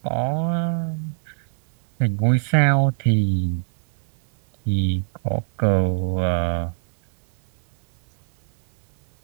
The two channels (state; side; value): silent; left; digital silence